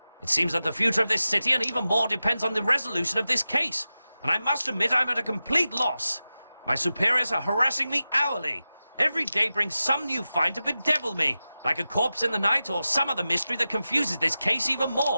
It seems that the future of this city and even more depends on the resolution of this case, and I must admit I'm at a complete loss. My superiors are harassing me hourly. Every day brings some new find to bedevil me, like a corpse in the night or some other mystery that confuses this case even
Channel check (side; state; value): both; inverted; correlation -0.94